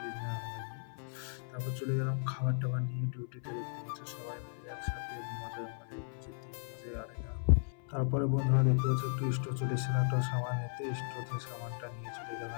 কি না হয়নি। তারপর চলে গেলাম খাবার টাবার নিয়ে ডিউটিতে। দেখতে পাচ্ছ সবাই মিলে একসাথে মজায় মজায় যেতে মজায় আরেকা। তারপরে বন্ধুরা দেখতে পাচ্ছ একটু স্টোর চলে এসেছিলাম একটা সামান নিতে। স্টোর সামানটা নিয়ে চলে গেলাম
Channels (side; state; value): right; silent; 54 dB below the other